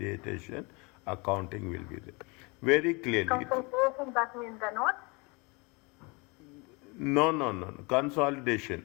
accounting will be there. Very clearly. Consolidation, that means the notes? No. Consolidation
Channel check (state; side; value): quieter; right; 28.6 dB